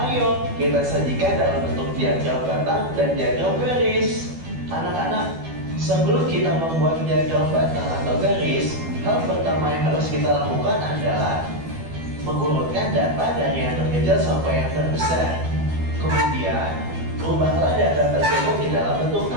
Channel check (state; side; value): late; left; 12 ms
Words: kita sajikan dalam bentuk diagram batang dan diagram garis. Anak-anak, sebelum kita membuat diagram batang atau garis, hal pertama yang harus kita lakukan adalah mengurutkan data dari yang terkecil sampai yang terbesar. Kemudian, rubahlah data tersebut di dalam bentuk